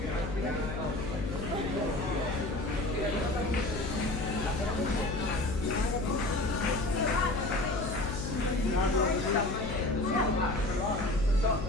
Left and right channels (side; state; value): left; noise; hum, 6 dB below the sound